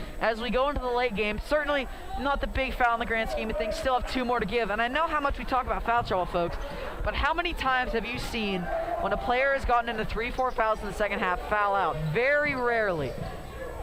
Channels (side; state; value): both; identical; correlation 1.00